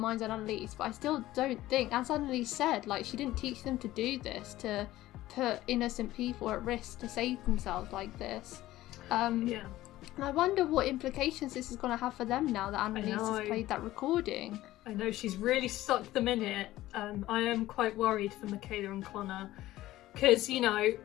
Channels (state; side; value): quieter; right; 15.7 dB